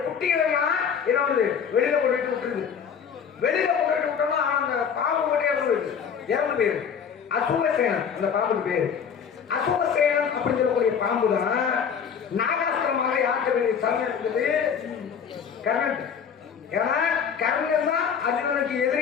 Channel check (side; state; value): right; quieter; 7.2 dB